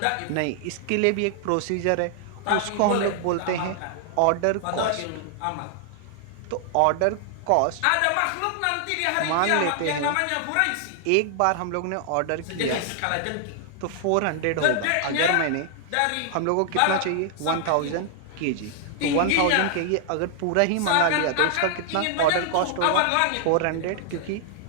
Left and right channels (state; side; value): different; both; correlation 0.00